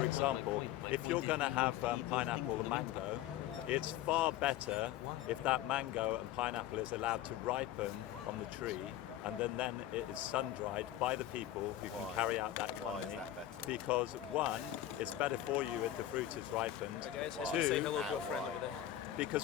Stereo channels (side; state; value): right; quieter; 12.8 dB